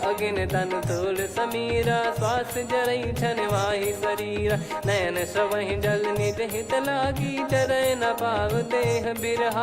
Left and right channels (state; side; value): identical; both; correlation 1.00